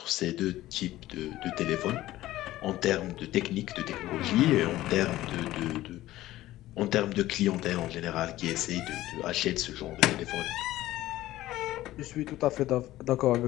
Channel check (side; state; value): right; quieter; 15.6 dB